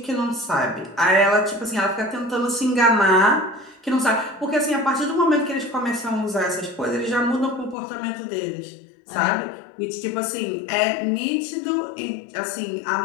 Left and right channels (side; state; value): right; drops out; at 7.8 s